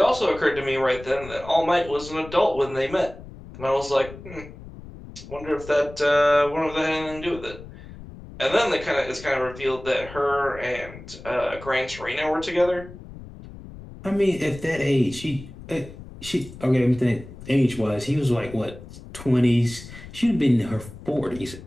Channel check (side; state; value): left; noise; rumble, 15 dB below the sound